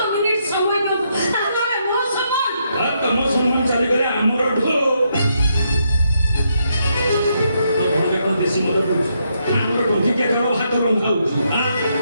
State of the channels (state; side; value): inverted; both; correlation -0.78